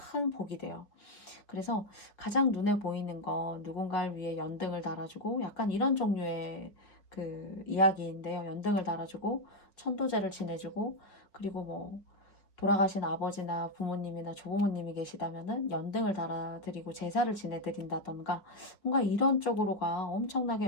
복이 돼요. 그래서 가장 눈에 보이는 건 누군가를 위해 연등을 달아주고 약간 이런 종류의 그 이야기인데요. 연등을 달아주고 천도제를 지내주고 그리고 뭐 돌아가신 아버지나 부모님이나 조부모님이 계시다면은 연등을 달아드리고 제사를 지내드린다던가 뭔가 이런 쪽으로가 엄청나게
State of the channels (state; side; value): late; right; 4.9 ms